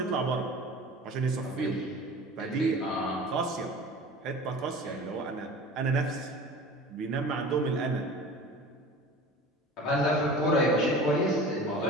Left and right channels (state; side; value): normal; both; correlation 0.39